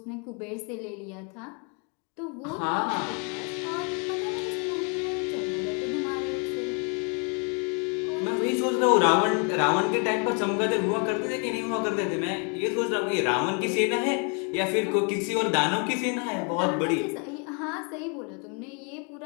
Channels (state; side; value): quieter; right; 37.2 dB